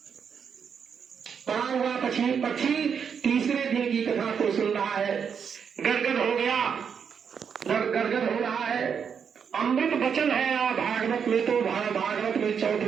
पड़ा हुआ पक्षी तीसरे दिन की कथा को सुन रहा है, गदगद हो गया, गदगद हो रहा है। अमृत वचन है भागवत में, तो भागवत में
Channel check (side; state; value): left; quieter; 7.0 dB